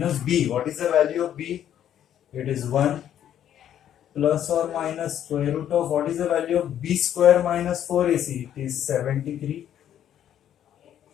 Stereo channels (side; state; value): right; quieter; 10.4 dB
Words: b. What is the value of b? It is 1 plus or minus square root of, what is the value of b square minus 4ac? It is 73